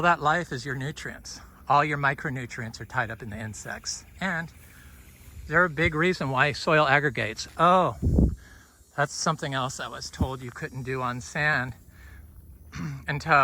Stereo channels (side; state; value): both; identical; correlation 1.00